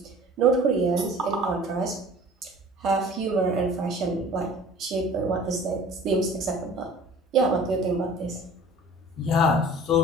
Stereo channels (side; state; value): both; normal; correlation 0.46